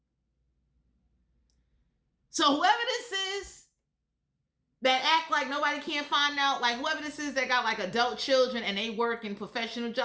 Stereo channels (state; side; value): identical; both; correlation 1.00